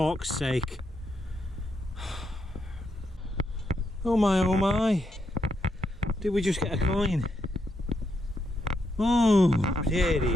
sake. Oh my. Did we just get a coin? Oh, dearie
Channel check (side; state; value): both; normal; correlation 0.80